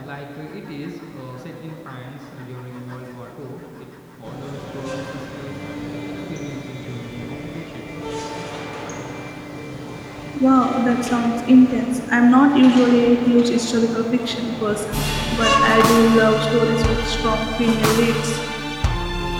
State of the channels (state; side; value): identical; both; correlation 1.00